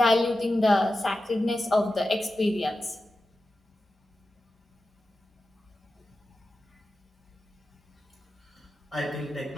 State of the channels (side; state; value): both; normal; correlation 0.92